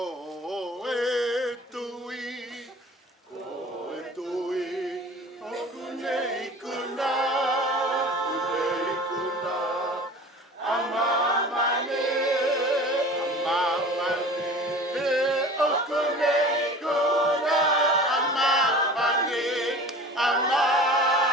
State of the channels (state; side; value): normal; both; correlation 0.40